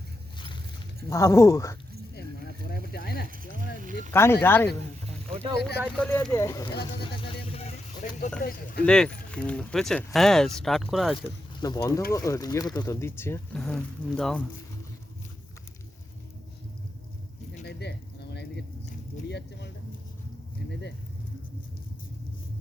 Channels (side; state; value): both; normal; correlation 0.86